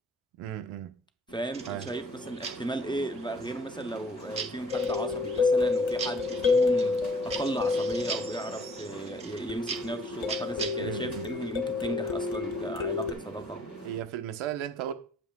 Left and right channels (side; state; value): both; normal; correlation 0.59